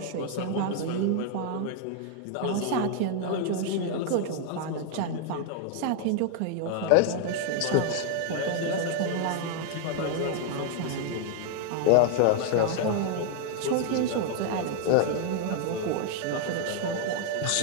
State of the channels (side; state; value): both; different; correlation 0.00